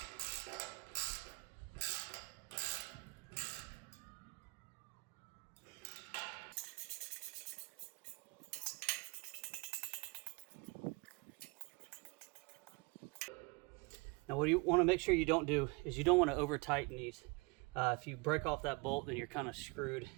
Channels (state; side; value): quieter; left; 28.7 dB